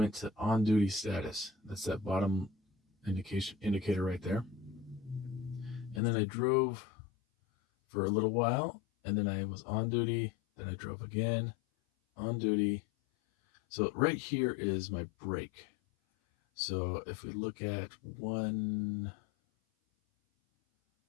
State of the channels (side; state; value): right; drops out; at 6.0 s